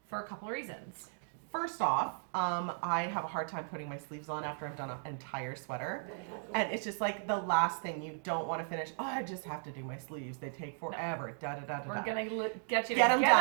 For a couple of reasons. First off, I have a hard time putting my sleeves on after I've done an entire sweater. And it's just like the last thing you don't want to finish. Oh, I just have to do my sleeves. They take forever. We're going to get you to get them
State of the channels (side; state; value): left; silent; digital silence